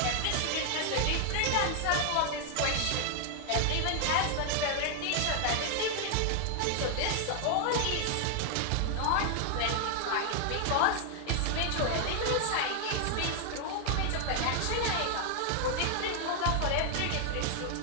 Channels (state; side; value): different; both; correlation 0.00